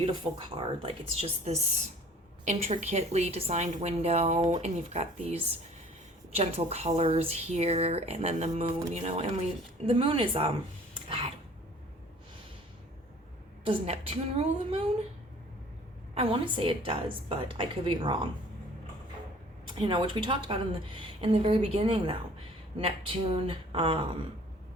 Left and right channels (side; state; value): both; normal; correlation 0.50